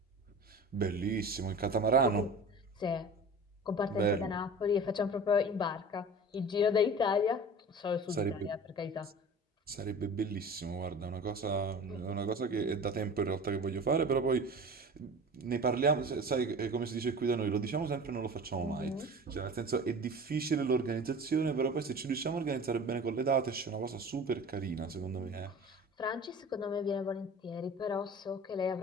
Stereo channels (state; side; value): normal; both; correlation 0.38